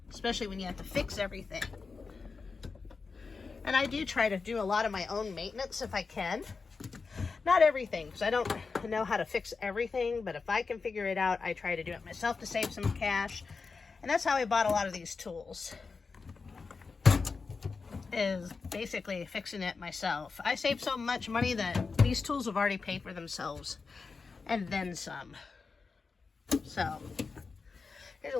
Especially when you have to fix everything. And I do try to do a lot of my own maintenance if I can. Not everything, because I don't know how to fix everything, but if I can figure it out, I try to do it myself to save some cash. And that's how I bought a lot of these tools, is basically fixing it myself. I saved so much money that these tools have already paid for themselves, and then some. So, here's a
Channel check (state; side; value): quieter; right; 4.6 dB